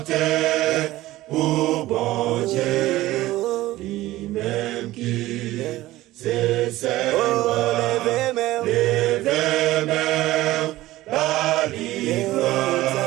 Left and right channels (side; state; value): left; quieter; 16.7 dB